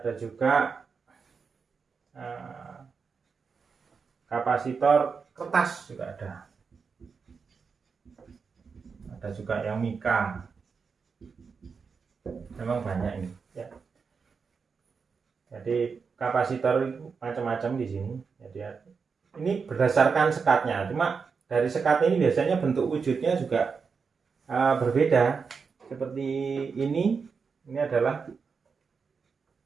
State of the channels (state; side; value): quieter; left; 5.4 dB